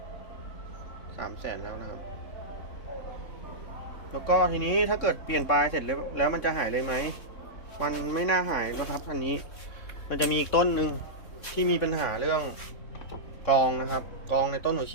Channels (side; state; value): right; late; 3.6 ms